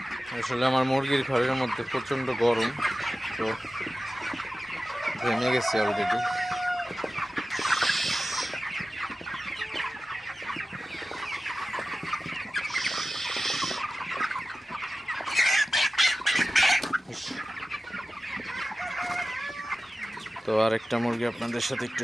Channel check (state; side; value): normal; both; correlation 0.95